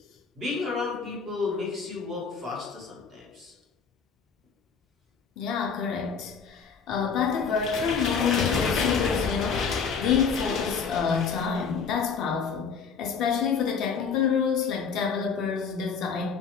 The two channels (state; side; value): quieter; right; 5.9 dB